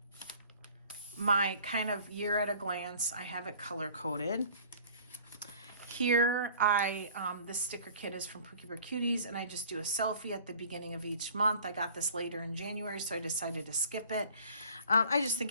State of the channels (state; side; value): inverted; both; correlation -0.49